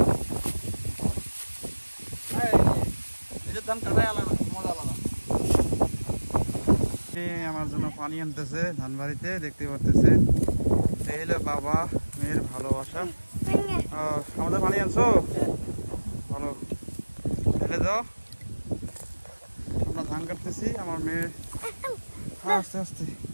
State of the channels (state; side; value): inverted; both; correlation -1.00